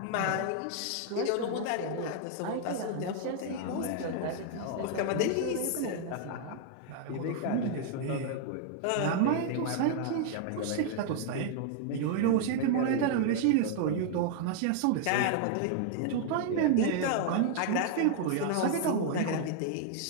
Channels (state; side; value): different; both; correlation 0.00